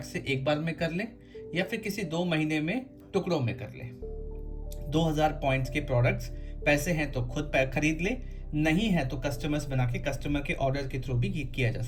से एक बार में कर ले या फिर किसी 2 महीने में टुकड़ों में कर ले। 2000 पॉइंट्स के प्रोडक्ट्स, पैसे हैं तो खुद खरीद ले, नहीं है तो कस्टमर्स बना के कस्टमर के ऑर्डर के थ्रू भी किया जा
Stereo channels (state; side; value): identical; both; correlation 1.00